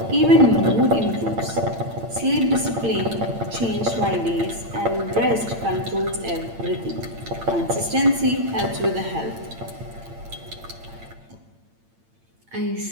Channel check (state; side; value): late; left; 8.8 ms